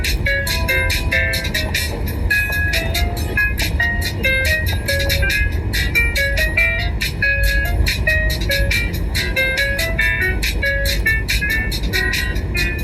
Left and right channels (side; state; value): both; identical; correlation 1.00